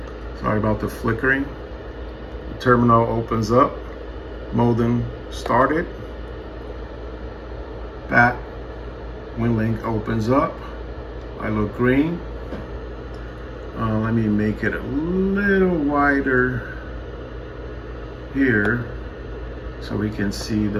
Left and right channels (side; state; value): both; identical; correlation 1.00